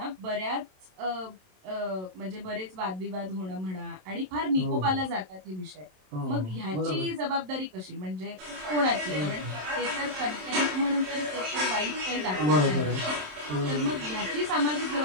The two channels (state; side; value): late; left; 27 ms